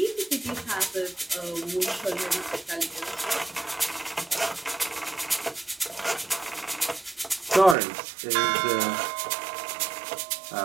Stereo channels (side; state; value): left; drops out; at 7.8 s